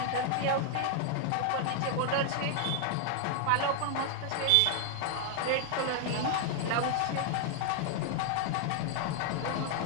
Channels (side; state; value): both; different; correlation 0.00